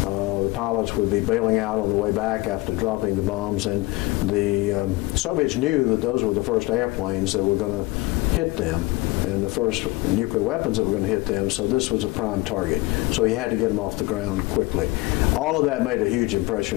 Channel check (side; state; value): right; quieter; 21.1 dB